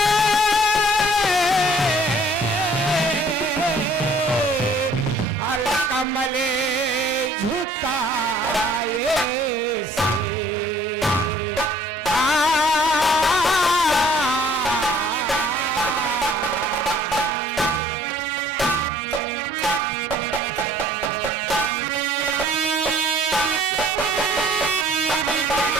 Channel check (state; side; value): normal; both; correlation 0.56